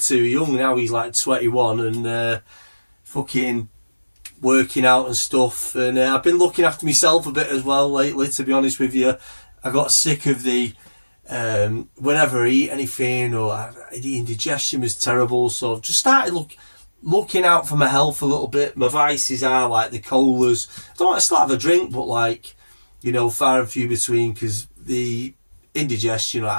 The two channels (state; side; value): inverted; both; correlation -1.00